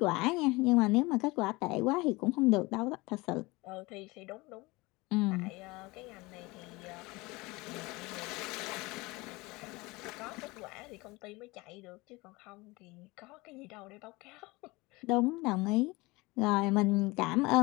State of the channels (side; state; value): right; quieter; 23.2 dB